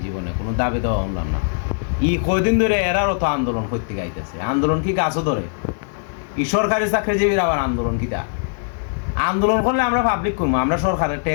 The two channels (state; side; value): silent; right; 57 dB below the other